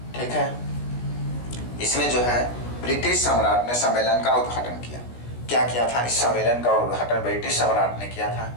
ठीक है, इसमें जो है ब्रिटिश सम्राट ने सम्मेलन का उद्घाटन किया। क्या किया था, इस सम्मेलन का उद्घाटन ब्रिटिश सम्राट ने किया था,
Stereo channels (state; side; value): late; right; 17 ms